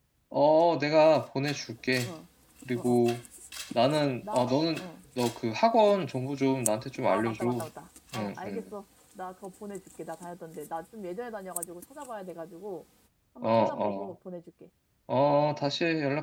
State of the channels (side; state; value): both; identical; correlation 1.00